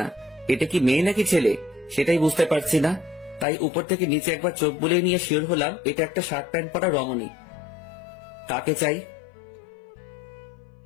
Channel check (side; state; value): right; drops out; at 3.5 s